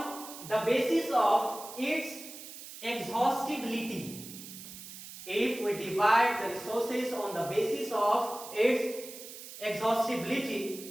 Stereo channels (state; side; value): noise; right; hiss, 13 dB below the sound